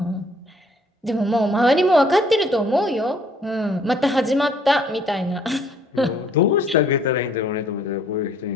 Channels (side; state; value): both; normal; correlation 0.61